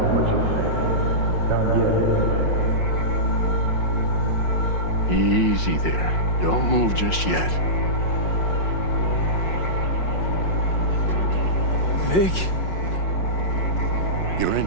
what you think. Not yet, anyway. Easy there. Don't move just yet. Vic? You're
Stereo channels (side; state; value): right; late; 5.5 ms